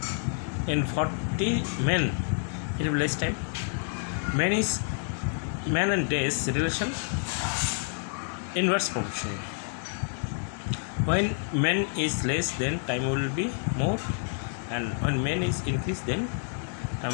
in 40 men, it will be less time. Man and days relation inverse proportion. When men is less, then time will be more, and when men is increase, then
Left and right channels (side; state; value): right; silent; digital silence